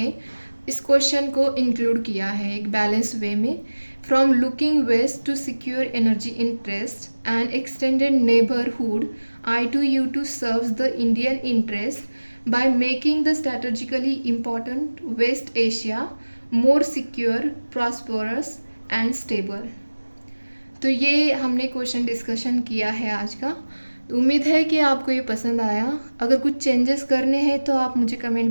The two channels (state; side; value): inverted; both; correlation -1.00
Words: इस क्वेश्चन को इंक्लूड किया है एक बैलेंस वे में। From looking West to secure energy interest and extended neighbourhood, I2U2 serves the Indian interest by making the strategically important West Asia more secure, prosperous and stable। तो ये हमने question discussion किया है आज का। तो उम्मीद है कि आपको ये पसंद आया। अगर कुछ चेंजेस करने हैं तो आप मुझे कमेंट